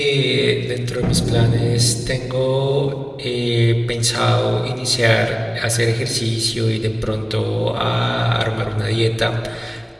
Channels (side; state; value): both; identical; correlation 1.00